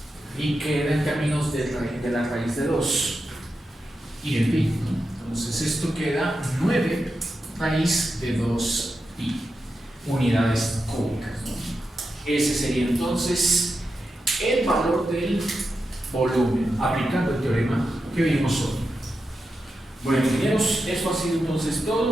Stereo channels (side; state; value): both; normal; correlation 0.89